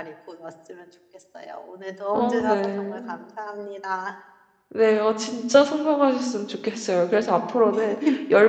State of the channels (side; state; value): both; identical; correlation 1.00